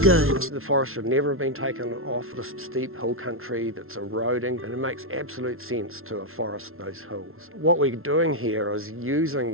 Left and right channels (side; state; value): left; late; 0.62 ms